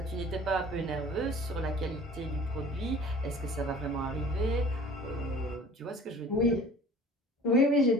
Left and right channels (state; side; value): normal; both; correlation 0.46